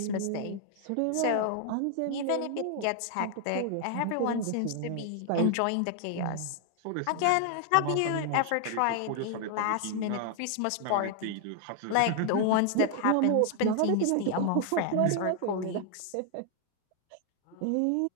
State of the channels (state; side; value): different; both; correlation 0.00